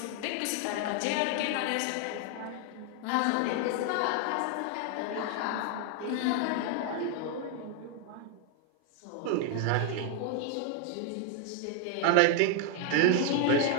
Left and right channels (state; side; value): different; both; correlation 0.01